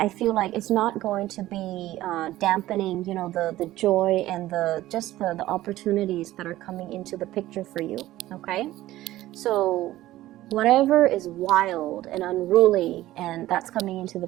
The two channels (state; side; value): quieter; left; 15.5 dB